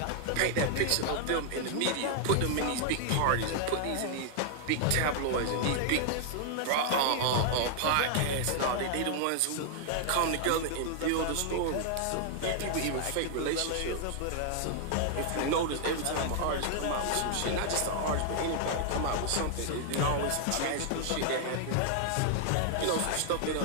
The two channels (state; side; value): different; both; correlation 0.00